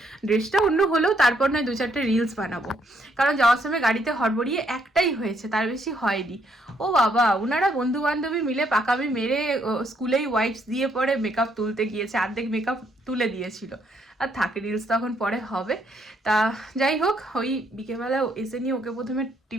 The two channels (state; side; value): normal; both; correlation 0.71